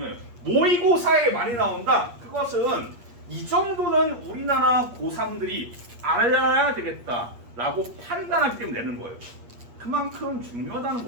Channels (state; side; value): late; left; 8.4 ms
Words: 모의고사에 많이 나온다. 그것은 이 정도는 우리나라 고3들이 알아야 되겠다라고 판단하기 때문에 내는 거예요. 그만큼 중요하다는